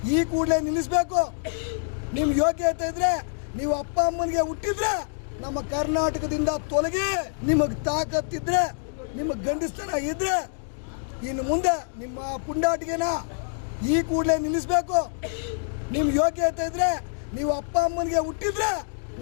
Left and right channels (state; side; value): silent; right; digital silence